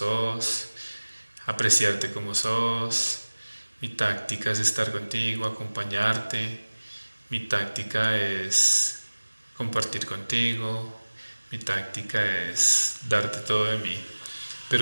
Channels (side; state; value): both; inverted; correlation -1.00